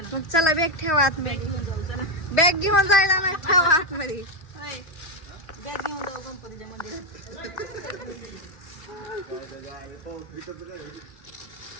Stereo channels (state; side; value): late; right; 3.1 ms